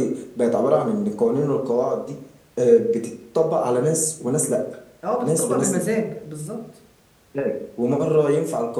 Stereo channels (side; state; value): both; identical; correlation 1.00